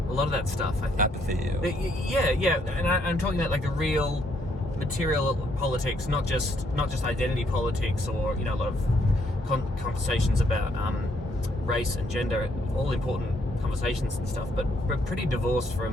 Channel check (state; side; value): normal; both; correlation 0.71